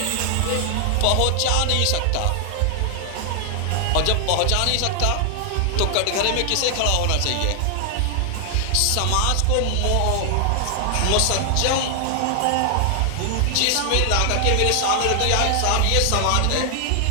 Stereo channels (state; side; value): different; both; correlation 0.00